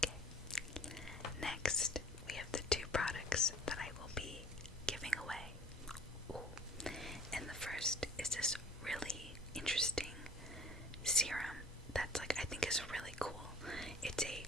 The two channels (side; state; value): both; normal; correlation 0.49